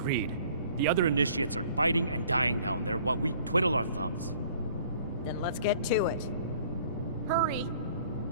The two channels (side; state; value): both; inverted; correlation -0.55